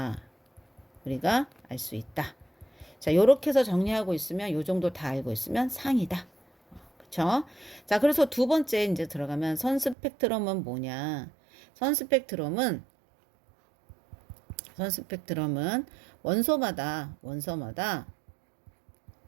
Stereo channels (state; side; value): drops out; left; at 10.0 s